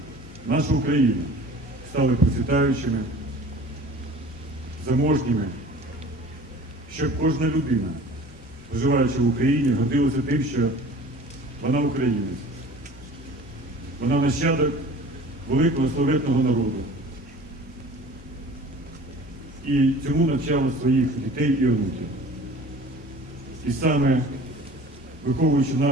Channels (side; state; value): both; normal; correlation 0.44